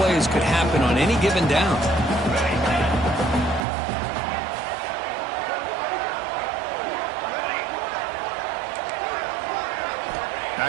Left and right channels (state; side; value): drops out; left; at 3.6 s